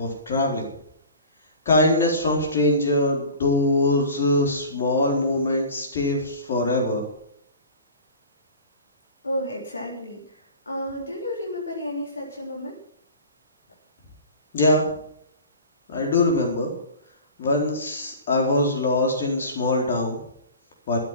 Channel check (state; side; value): inverted; both; correlation -0.39